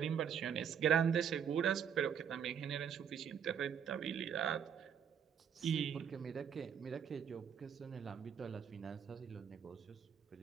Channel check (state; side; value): quieter; left; 8.0 dB